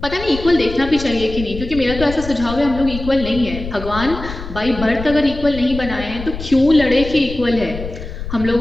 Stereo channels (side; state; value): left; noise; rumble, 10 dB below the sound